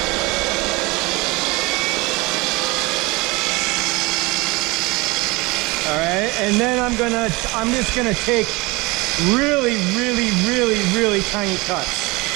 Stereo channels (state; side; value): quieter; left; 24.2 dB